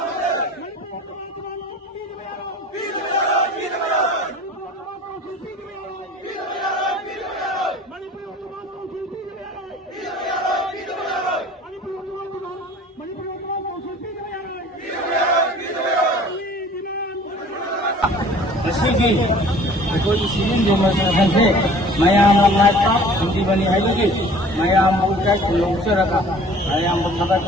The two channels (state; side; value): normal; both; correlation 0.48